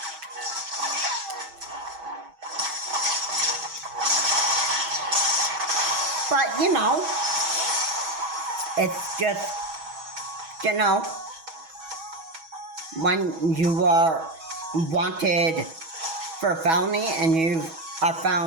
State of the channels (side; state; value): left; late; 6.2 ms